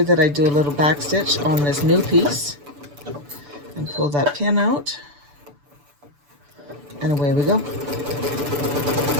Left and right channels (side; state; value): left; late; 6.9 ms